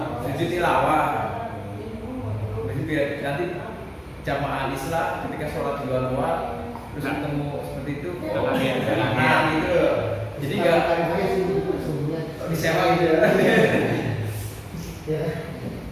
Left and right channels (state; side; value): identical; both; correlation 1.00